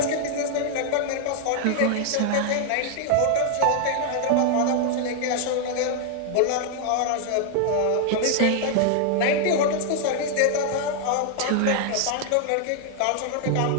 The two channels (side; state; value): both; different; correlation 0.00